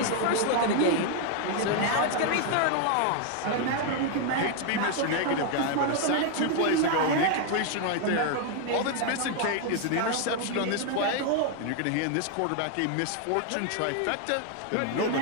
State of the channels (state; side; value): different; both; correlation 0.00